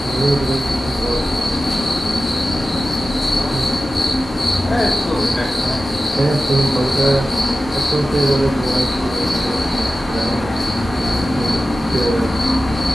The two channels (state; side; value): normal; both; correlation 0.94